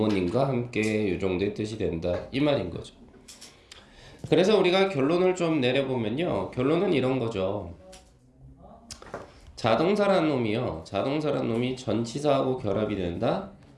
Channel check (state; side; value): identical; both; correlation 1.00